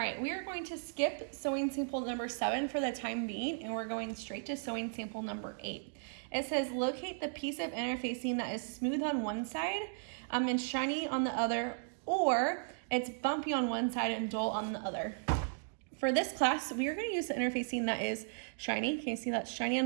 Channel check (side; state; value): left; silent; digital silence